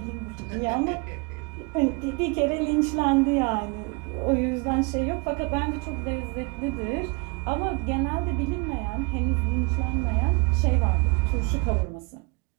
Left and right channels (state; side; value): quieter; left; 28.7 dB